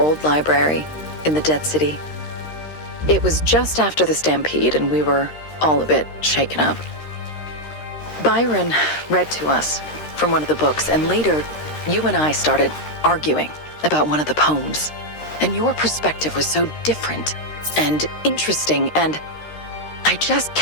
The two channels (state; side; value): late; right; 13 ms